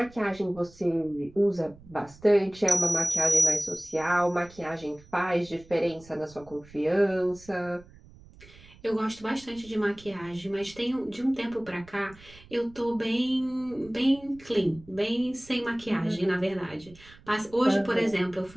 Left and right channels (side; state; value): right; noise; rumble, 23 dB below the sound